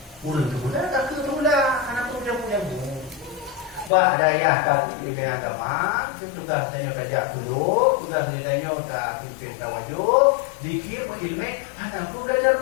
Urang tu pula, tak tu pula. Anak tu dia punya Bah daya kat ilmu agama, tugas tanya tajak dulu, tugas tanya tak pimpin tawajud, dikir ilmu, anak pun belajar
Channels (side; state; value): right; drops out; at 3.9 s